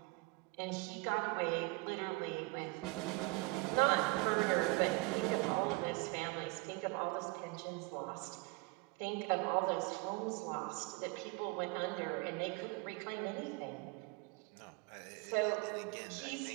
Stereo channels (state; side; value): quieter; left; 25.8 dB